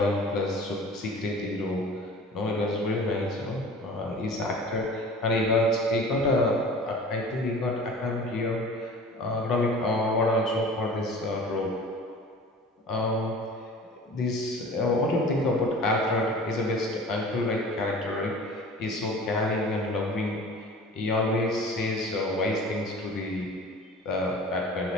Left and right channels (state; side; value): normal; both; correlation 0.42